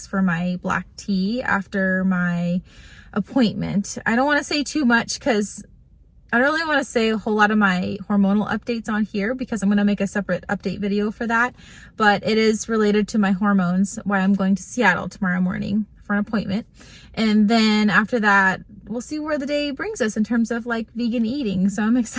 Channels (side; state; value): both; identical; correlation 1.00